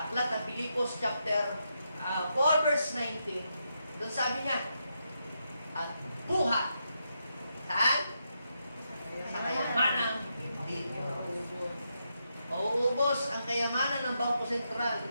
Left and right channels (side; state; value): both; inverted; correlation -0.83